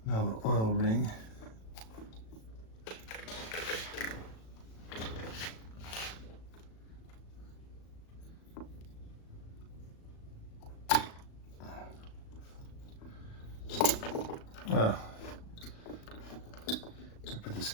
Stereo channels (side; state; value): right; late; 36 ms